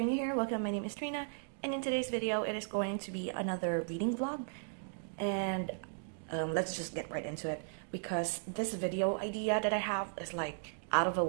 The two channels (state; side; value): silent; left; digital silence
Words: new here, welcome. My name is Trina, and in today's video it is going to be another reading vlog. And let's just get right into it, because this video idea that I have is like out of a